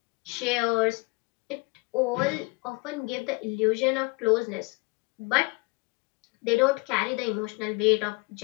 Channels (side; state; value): right; quieter; 28.0 dB